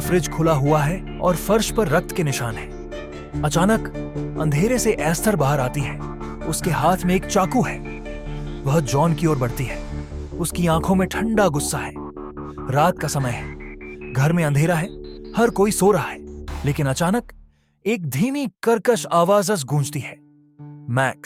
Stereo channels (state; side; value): identical; both; correlation 1.00